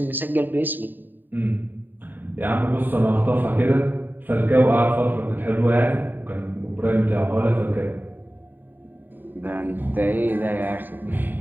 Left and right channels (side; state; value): left; late; 0.091 ms